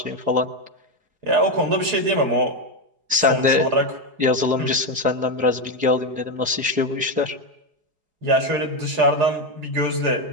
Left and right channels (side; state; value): left; late; 4.8 ms